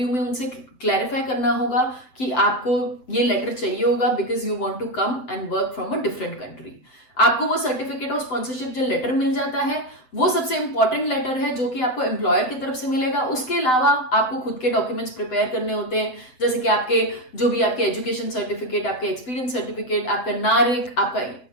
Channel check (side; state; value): right; late; 7.9 ms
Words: में उनसे क्लैरिफाई करना होगा कि आपको ये लेटर चाहिए होगा because you want to come and work from a different country. आपको वो सर्टिफिकेट ऑफ स्पॉन्सरशिप जो लेटर मिल जाता है वो सबसे इंपॉर्टेंट लेटर है जो कि आपको एम्प्लॉयर की तरफ से मिलेगा। उसके अलावा आपको खुद के डॉक्यूमेंट्स प्रिपेयर करने होते हैं, जैसे कि आपके जो भी आपके एजुकेशन सर्टिफिकेट, आपके एक्सपीरियंस सर्टिफिकेट, आपका नारिक, आपका